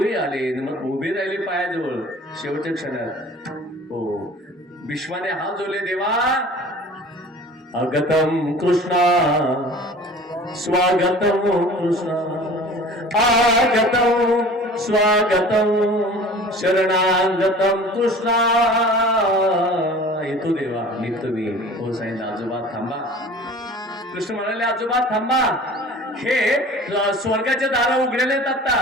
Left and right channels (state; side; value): normal; both; correlation 0.43